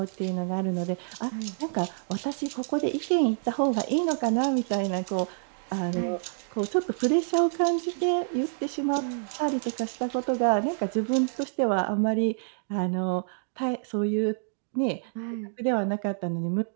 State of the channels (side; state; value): left; silent; digital silence